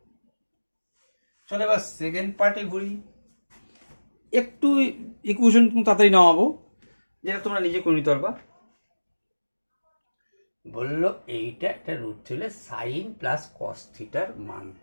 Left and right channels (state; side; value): inverted; both; correlation -1.00